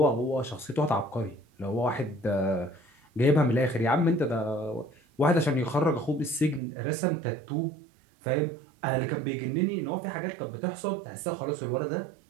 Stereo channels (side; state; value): left; drops out; at 6.6 s